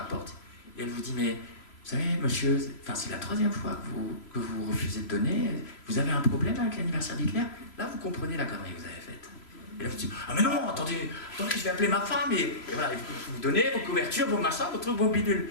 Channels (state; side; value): late; right; 3.0 ms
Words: porte, et elle vous dit, mais, vous savez, monsieur, c'est la troisième fois que vous refusez de donner, vous avez un problème avec l'anniversaire d'Hitler? Là, vous comprenez la connerie que vous avez faite. Et là, vous dites, ah mais non, attendez, je vais appeler ma femme, et voilà, vous donnez vos couvertures, vos machins, vos bidules.